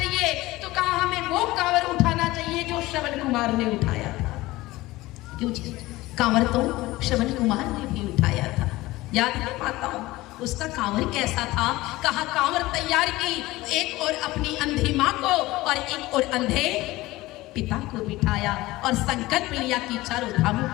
तो कहा हमें वो कांवर उठाना चाहिए जो श्रवण कुमार ने उठाया था। क्यों जी, कांवर तो श्रवण कुमार ने भी उठाया था, याद है माताओं, उसका कांवर कैसा था। कहा कांवर तैयार की, एक और अपनी अंधी माँ को और एक और अंधे पिता को बिठाया और संकल्प लिया कि चारों धामों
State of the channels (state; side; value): quieter; right; 18.8 dB